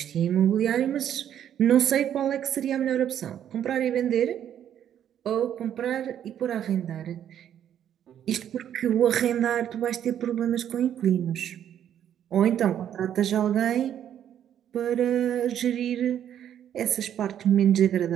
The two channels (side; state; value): left; quieter; 10.0 dB